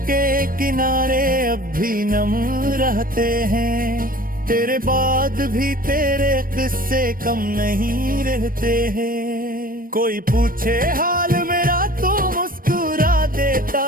के किनारे अब भी नम रहते हैं, तेरे बाद भी तेरे किस्से कम नहीं रहते हैं। कोई पूछे हाल मेरा तो मुस्कुरा देता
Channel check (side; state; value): left; late; 0.41 ms